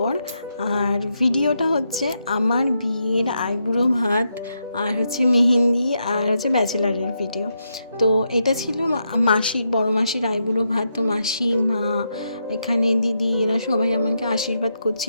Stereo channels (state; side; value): inverted; both; correlation -0.82